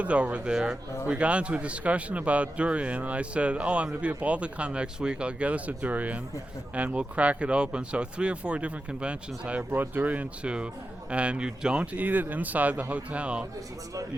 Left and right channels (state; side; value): normal; both; correlation 0.91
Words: over there. We got into a discussion about durian, and I said, oh, I'm going to be at Balticon next week. I'll get us a durian, and we'll crack it open. So 3 or 4 different conventions I have brought durian to, and you don't eat it inside the hotel.